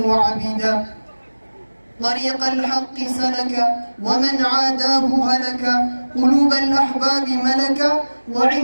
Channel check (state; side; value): inverted; both; correlation -1.00